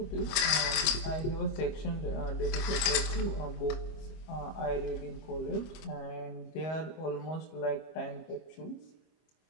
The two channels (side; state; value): right; late; 25 ms